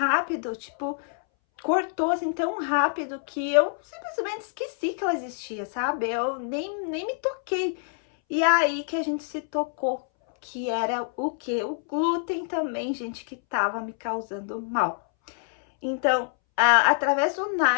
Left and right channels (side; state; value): right; silent; 61 dB below the other